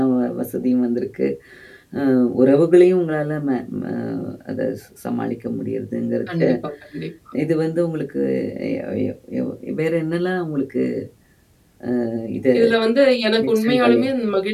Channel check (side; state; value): both; identical; correlation 1.00